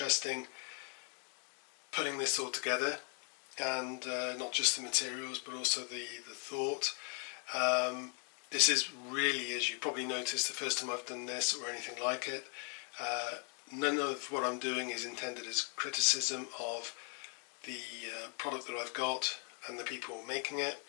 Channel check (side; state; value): right; quieter; 39.9 dB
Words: putting this all together, and not just the materials but also the thought. This is really, as you probably noticed, the first time I've done this or anything like it. none of what I'm doing is intended as criticism of the product that I've got and the people making it.